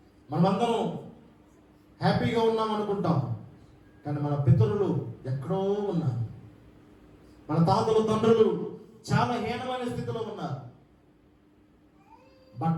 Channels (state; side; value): identical; both; correlation 1.00